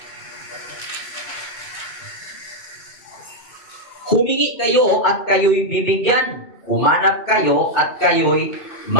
Humingi kayo at kayo'y bibigyan. Humanap kayo at kayo'y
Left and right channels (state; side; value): late; right; 2.1 ms